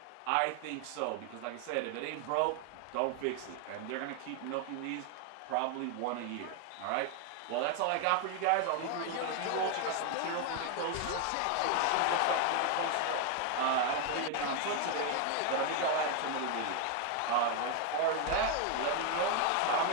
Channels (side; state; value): both; different; correlation 0.01